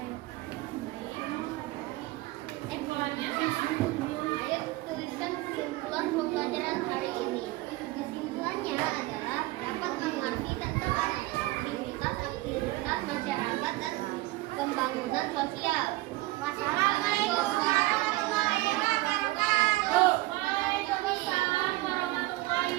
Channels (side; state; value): left; quieter; 19.4 dB